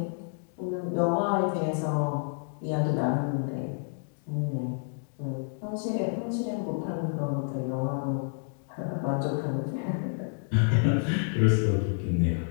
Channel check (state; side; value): silent; right; 58 dB below the other